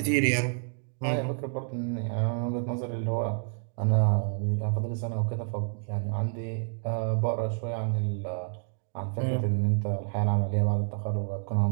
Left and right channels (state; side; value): silent; left; 59 dB below the other